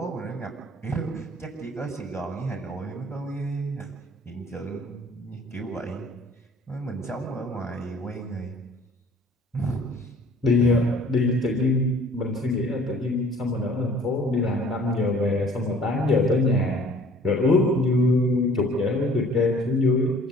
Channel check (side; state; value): both; normal; correlation 0.52